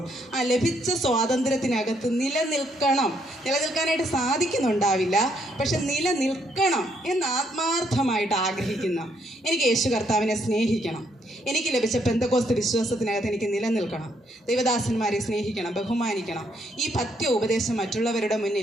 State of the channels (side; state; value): both; normal; correlation 0.72